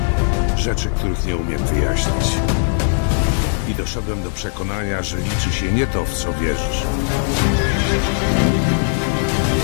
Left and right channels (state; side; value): silent; right; 62 dB below the other